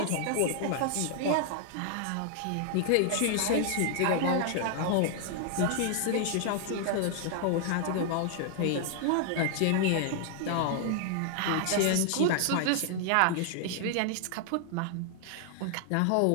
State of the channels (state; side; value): different; both; correlation 0.00